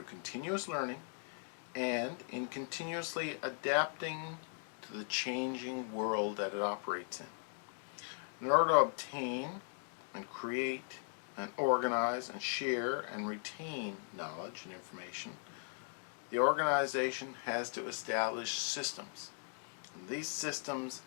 continuous learning and in continuously adapting to the changing world that it operates in. In order to obtain and create and organize and share and retain knowledge and information, the organization has to establish systems. And these systems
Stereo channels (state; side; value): silent; right; 52 dB below the other